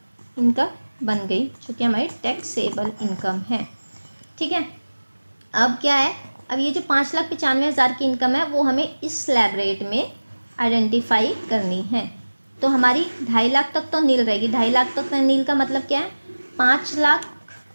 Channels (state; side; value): inverted; both; correlation -1.00